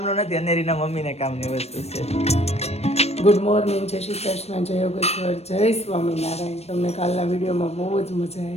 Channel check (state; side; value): late; right; 0.31 ms